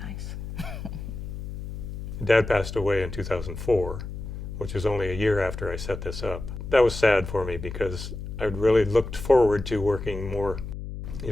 nice. Dad passed away in 2004, which was only a year after I set this up. That was sad for me because I'd really looked forward to working more,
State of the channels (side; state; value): left; noise; hum, 8 dB below the sound